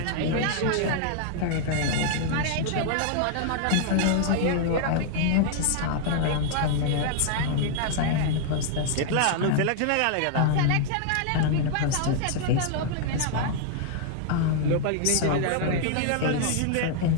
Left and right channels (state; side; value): different; both; correlation 0.00